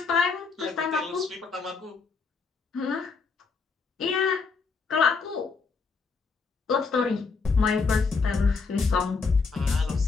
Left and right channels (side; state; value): right; quieter; 4.7 dB